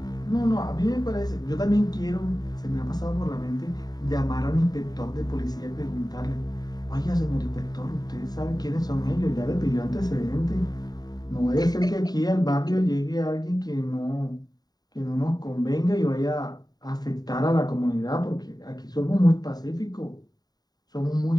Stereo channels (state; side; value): late; right; 0.19 ms